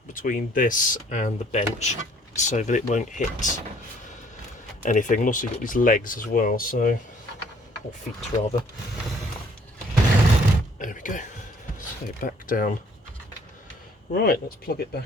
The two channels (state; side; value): normal; both; correlation 0.59